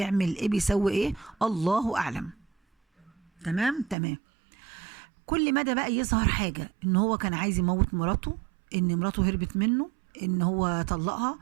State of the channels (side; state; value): left; drops out; at 4.0 s